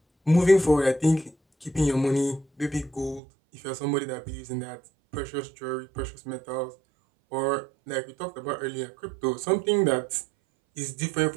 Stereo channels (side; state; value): left; drops out; at 3.2 s